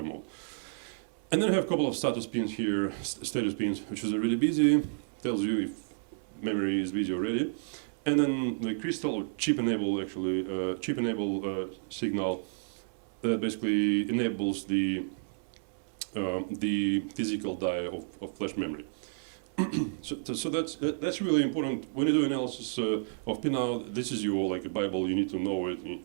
mode. And then I have a couple of status pins here, status pins, which is really busy, tells you if memory is busy already. And then the crystal or chip enable signal that basically enables the physical die of flash memory. So that's really important when you do analysis of Pinout. This is your like a Bible. You need to know it.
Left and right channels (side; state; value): left; silent; 57 dB below the other